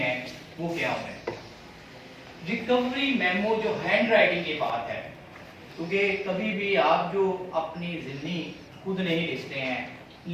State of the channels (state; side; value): identical; both; correlation 1.00